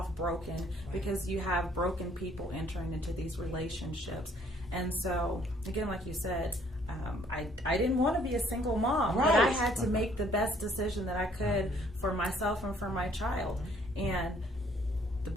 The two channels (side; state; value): both; normal; correlation 0.62